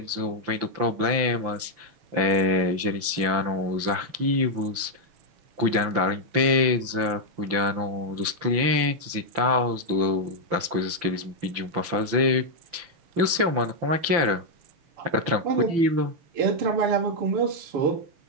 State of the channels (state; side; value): late; left; 5.9 ms